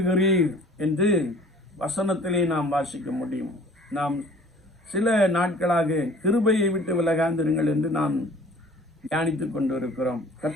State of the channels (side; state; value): both; normal; correlation 0.50